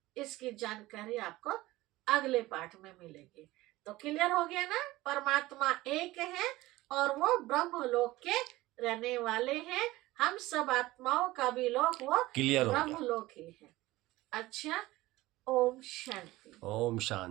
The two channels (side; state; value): left; quieter; 18.3 dB